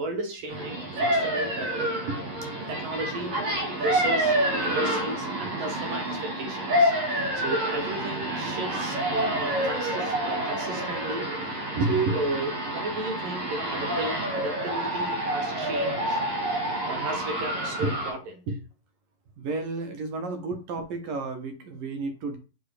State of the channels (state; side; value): late; left; 11 ms